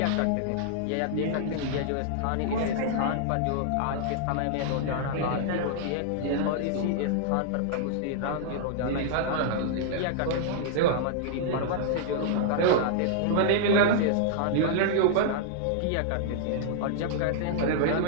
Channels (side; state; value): both; different; correlation -0.01